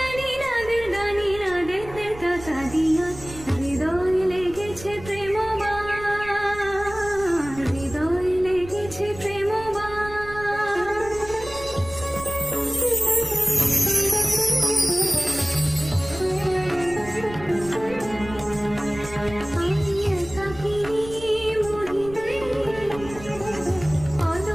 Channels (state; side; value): noise; right; rumble, 15 dB below the sound